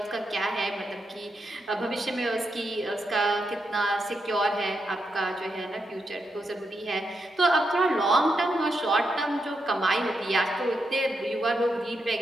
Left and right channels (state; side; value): normal; both; correlation 0.83